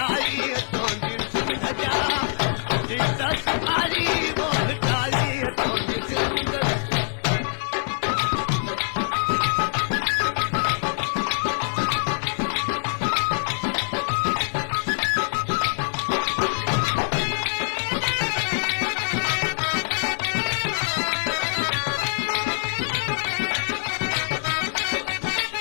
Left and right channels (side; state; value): right; silent; digital silence